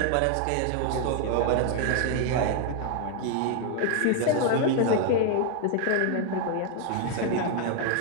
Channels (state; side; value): different; both; correlation 0.00